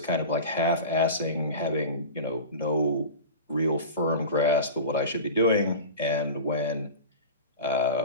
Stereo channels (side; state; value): both; inverted; correlation -0.30